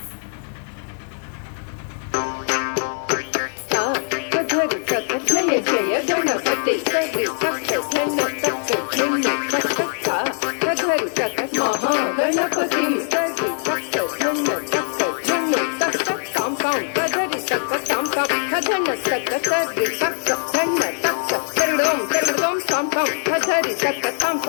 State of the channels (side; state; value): right; silent; 64 dB below the other